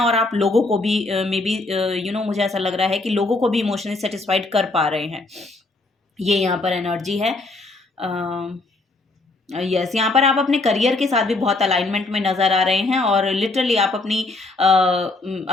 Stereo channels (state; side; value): quieter; right; 3.2 dB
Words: आप लोगों को भी मे बी मुझे ऐसा लग रहा है कि लोगों को भी इमोशनली सेटिस्फाइड कर पा रहे हैं। ये यहाँ पर एनर्जी है। यस, यहाँ पर आप अपने करियर के साथ भी बहुत अलाइनमेंट में नजर आ रहे हैं, और लिटरली आप